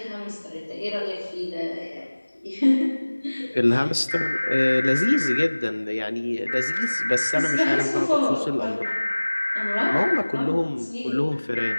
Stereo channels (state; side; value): inverted; both; correlation -1.00